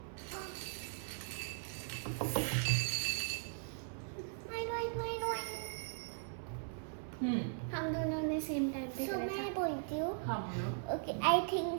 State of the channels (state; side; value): silent; left; 52 dB below the other